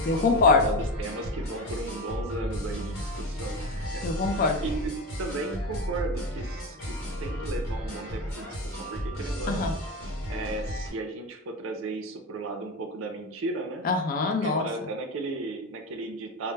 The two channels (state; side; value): normal; both; correlation 0.23